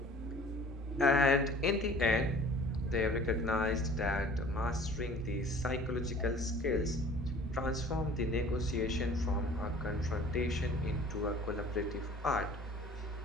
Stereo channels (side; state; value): both; normal; correlation 0.48